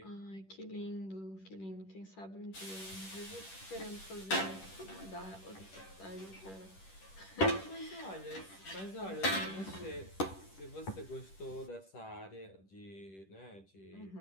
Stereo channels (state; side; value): late; right; 10 ms